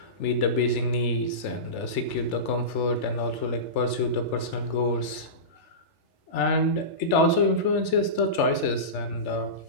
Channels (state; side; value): late; right; 3.4 ms